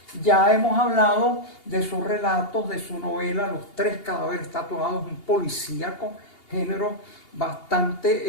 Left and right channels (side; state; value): right; late; 2.8 ms